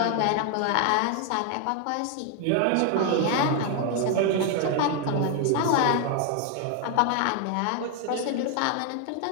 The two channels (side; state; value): both; different; correlation 0.00